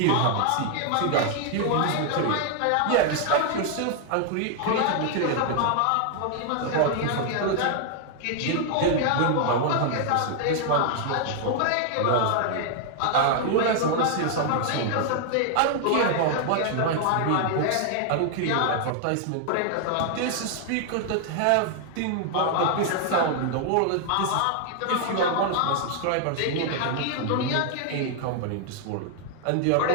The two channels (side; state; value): both; different; correlation 0.00